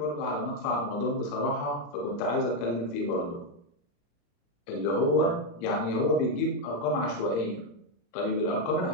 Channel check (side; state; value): right; late; 35 ms